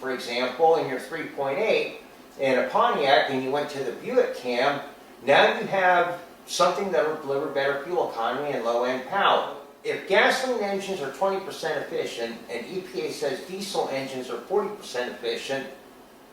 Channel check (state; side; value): identical; both; correlation 1.00